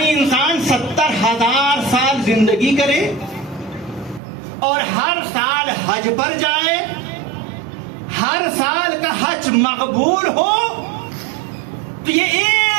انسان 70,000 سال زندگی کرے اور ہر سال حج پر جائے، ہر سال کا حج مقبول ہو، تو یہ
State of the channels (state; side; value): drops out; left; at 4.2 s